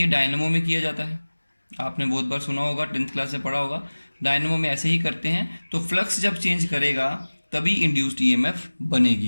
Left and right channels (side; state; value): both; inverted; correlation -1.00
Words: डायनेमो में किया जाता है, आपने बहुत बार सुना होगा, 10th क्लास से पढ़ा होगा, डायनेमो में ऐसे ही करते हैं। तो फ्लक्स जब चेंज करेगा तभी इंड्यूस्ड ईएमएफ